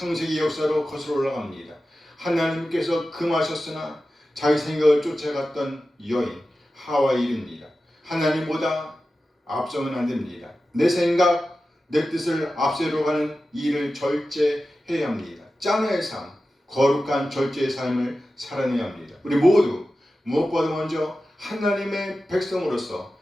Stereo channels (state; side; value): normal; both; correlation 0.94